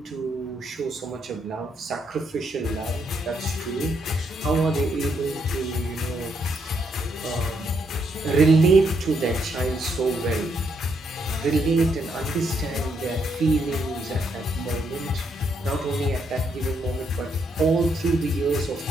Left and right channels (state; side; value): normal; both; correlation 0.76